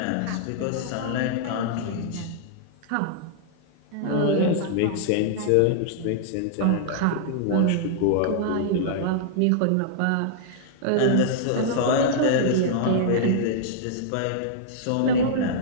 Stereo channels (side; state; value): both; different; correlation -0.02